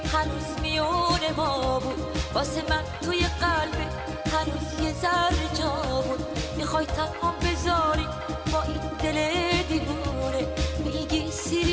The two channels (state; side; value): identical; both; correlation 1.00